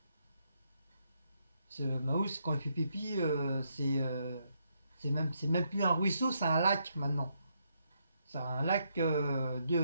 Ce Maus, quand il fait pipi, c'est même plus un ruisseau, c'est un lac maintenant. C'est un lac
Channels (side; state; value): both; inverted; correlation -0.77